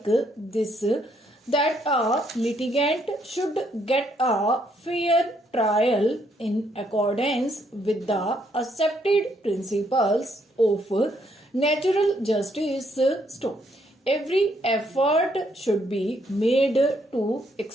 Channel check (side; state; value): both; normal; correlation 0.72